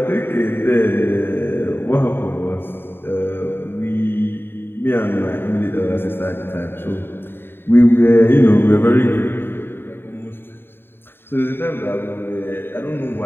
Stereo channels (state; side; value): late; right; 0.11 ms